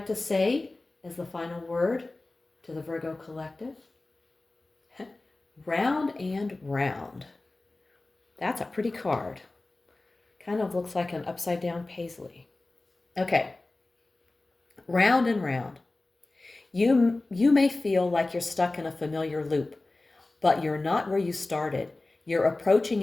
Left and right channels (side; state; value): right; quieter; 3.1 dB